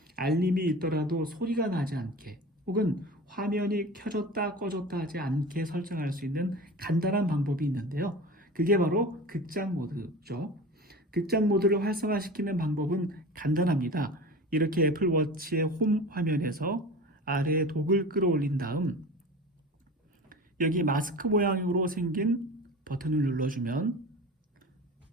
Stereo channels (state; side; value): normal; both; correlation 0.34